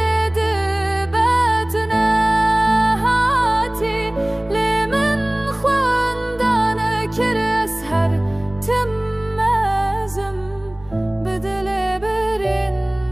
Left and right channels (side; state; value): left; noise; rumble, 23 dB below the sound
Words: دبتنا هاتي لمن خواندانا كر أسهر تمازم بدل